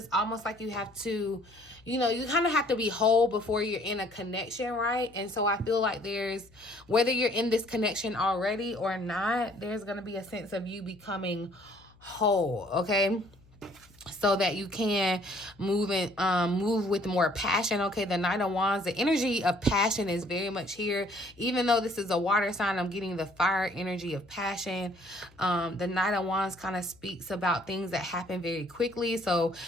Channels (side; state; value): left; noise; hum, 28 dB below the sound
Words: almost like you have to, you know, you kind of have to be whole before you're in a connection, right? And so I feel like there's, whether you're in this connection already or not, there's going to be a sense of you becoming whole, okay? So that you can move with more passion. Okay, the Knight of Wands, the energy of passion is very much here. Even though this is a water sign, I'm getting the fire energy of passion. The Knight of Wands kind of speaks about things that happen very quickly. So